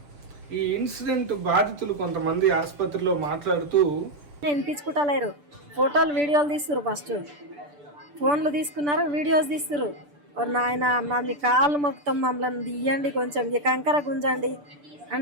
ఈ ఇన్సిడెంట్ బాధితులు కొంతమంది ఆసుపత్రిలో మాట్లాడుతూ వినిపించుకుంటలేరు, ఫోటోలు వీడియోలు తీస్తున్నారు, ఫస్ట్ ఫోన్లు తీసుకున్నారు, వీడియోస్ తీస్తున్నారు. నాయన అన్న మీ కాళ్ళు మొత్తం మమ్మల్ని తీయండి, కొంచెం ఈ కంకర గుంజండి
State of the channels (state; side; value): late; left; 6.8 ms